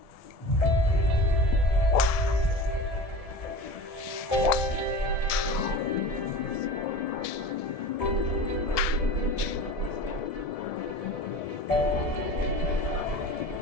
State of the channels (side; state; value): right; late; 1.7 ms